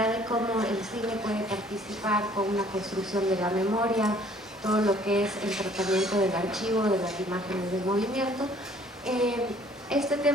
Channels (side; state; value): both; normal; correlation 0.57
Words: de cómo el cine puede participar con una construcción de la memoria, todo lo que es el tratamiento del archivo, de las imágenes del movimiento. Este